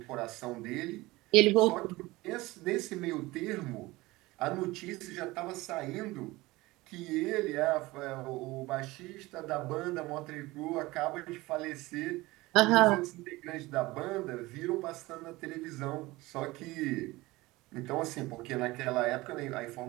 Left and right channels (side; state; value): left; quieter; 20.3 dB